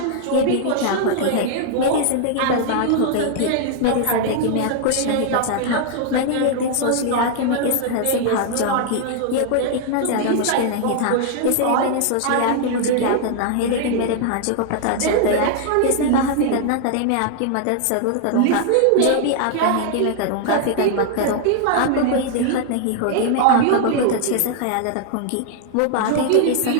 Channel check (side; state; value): both; different; correlation 0.00